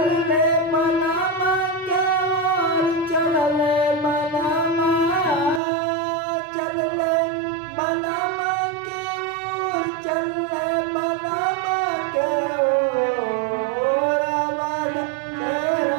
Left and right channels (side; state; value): left; drops out; at 5.6 s